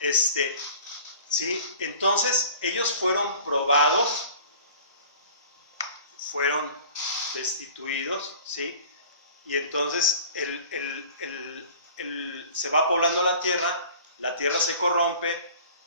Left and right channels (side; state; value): both; inverted; correlation -0.45